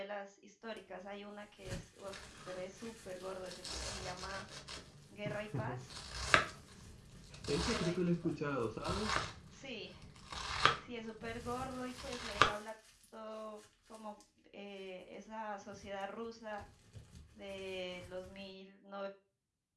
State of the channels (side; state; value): both; identical; correlation 1.00